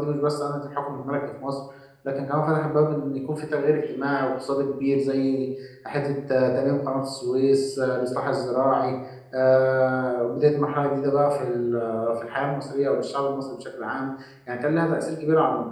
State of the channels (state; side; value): identical; both; correlation 1.00